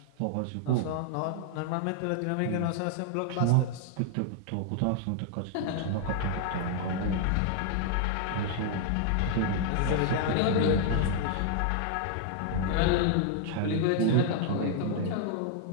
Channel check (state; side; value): different; both; correlation 0.00